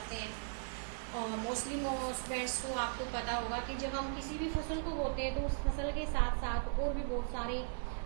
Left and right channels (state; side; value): silent; left; digital silence